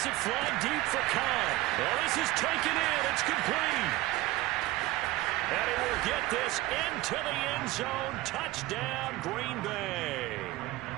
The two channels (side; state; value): left; quieter; 18.2 dB